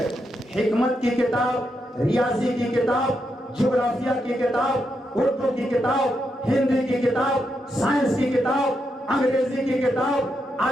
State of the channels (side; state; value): both; normal; correlation 0.83